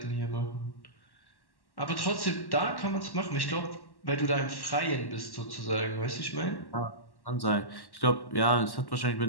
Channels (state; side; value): late; right; 1.1 ms